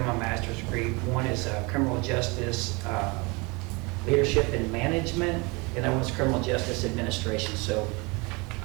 my master's degree, one is criminal justice leadership and management, and that one's criminal justice administration. So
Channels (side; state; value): left; quieter; 27.5 dB